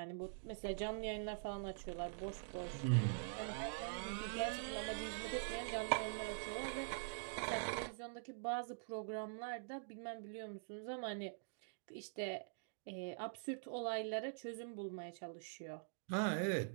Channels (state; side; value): silent; left; digital silence